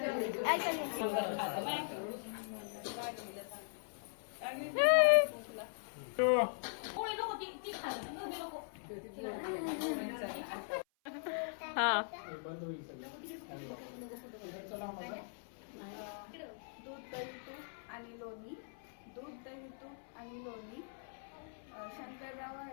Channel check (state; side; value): silent; right; 51 dB below the other